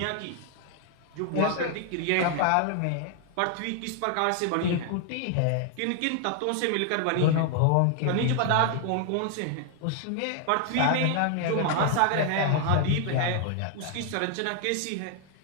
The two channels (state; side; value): different; both; correlation 0.00